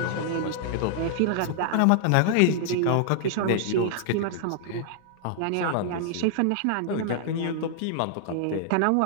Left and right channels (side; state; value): both; different; correlation -0.01